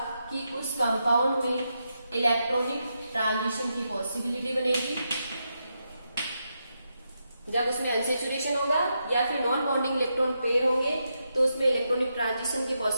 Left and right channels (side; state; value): both; inverted; correlation -0.84